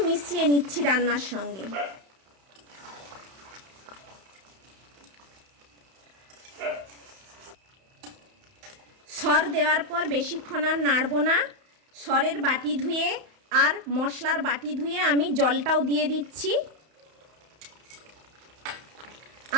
মিশিয়ে নিচ্ছি রান্নার সঙ্গে। সর দেওয়ার পর বেশিক্ষণ আর নাড়ব না। সরের বাটি ধুয়ে আর মশলার বাটি ধুয়ে আমি জলটাও দিয়ে দিচ্ছি,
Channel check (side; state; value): left; late; 31 ms